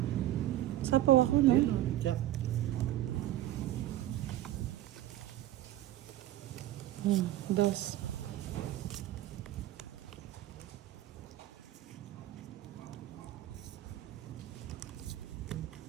Sapaw ako, no? Check. Dos.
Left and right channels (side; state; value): left; quieter; 14.3 dB